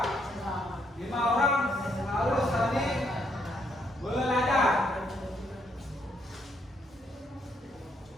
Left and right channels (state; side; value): normal; both; correlation 0.73